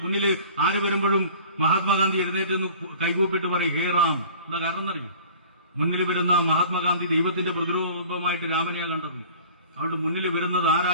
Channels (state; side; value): inverted; both; correlation -0.44